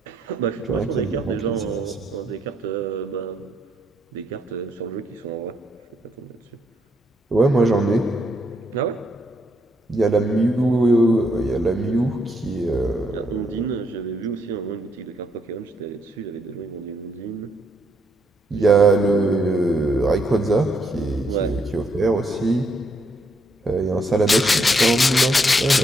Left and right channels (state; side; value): normal; both; correlation 0.74